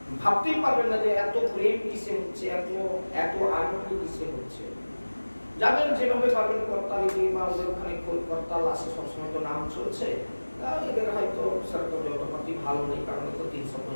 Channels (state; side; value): inverted; both; correlation -1.00